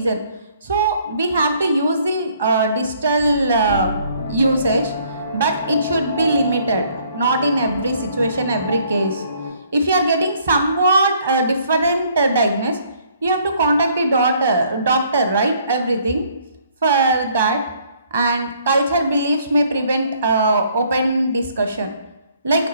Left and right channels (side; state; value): both; inverted; correlation -0.63